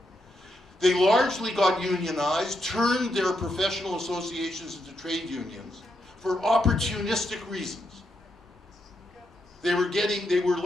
They largely got unionized, turned their professional associations into trade unions for opportunistic reasons. They were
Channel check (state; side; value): normal; both; correlation 0.81